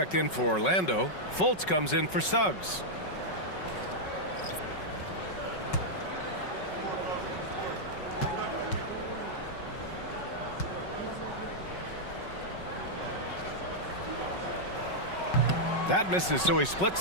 in for Orlando. Fultz comes in for Suggs. That misses, so he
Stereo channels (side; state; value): right; late; 5.4 ms